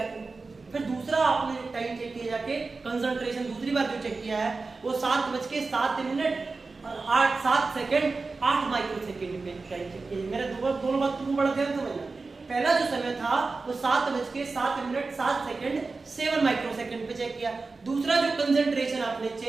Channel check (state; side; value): quieter; left; 4.0 dB